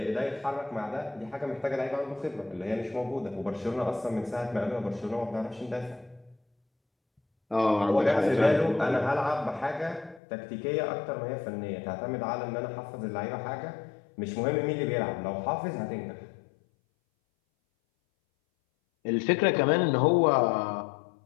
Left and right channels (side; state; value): right; drops out; at 10.2 s